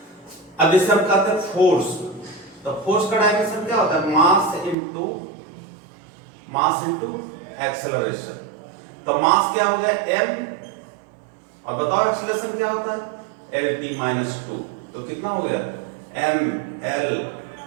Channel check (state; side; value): drops out; left; at 4.8 s